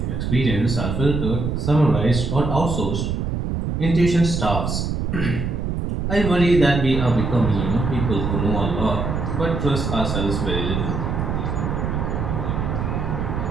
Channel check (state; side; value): noise; right; rumble, 1 dB below the sound